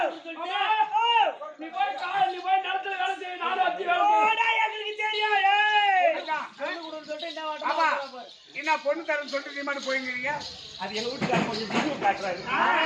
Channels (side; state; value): both; identical; correlation 1.00